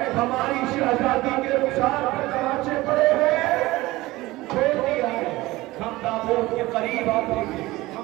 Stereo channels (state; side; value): quieter; left; 19.1 dB